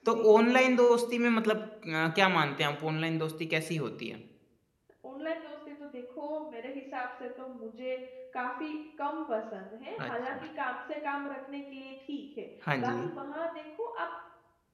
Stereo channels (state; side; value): identical; both; correlation 1.00